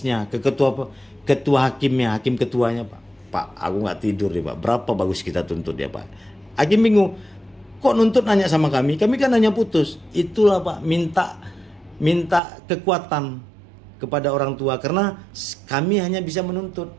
ke ketua hakimnya, hakim ketuanya Pak. Pak, aku nggak tidur nih Pak. Berapa bagus kita tuntut ya Pak? Hakim bingung. Kok nuntut nanya sama kami? Kami kan hanya putus. Itulah Pak, minta kekuatan kepada orang tua karena kami hanya bisa menuntut.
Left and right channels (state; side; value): drops out; left; at 12.4 s